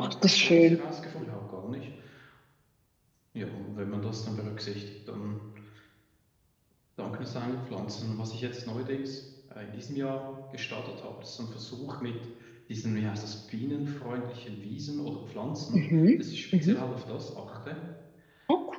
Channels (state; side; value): identical; both; correlation 1.00